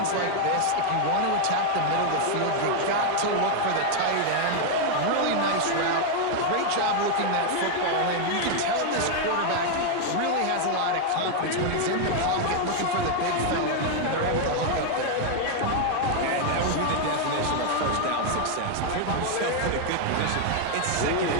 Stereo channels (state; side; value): different; both; correlation 0.00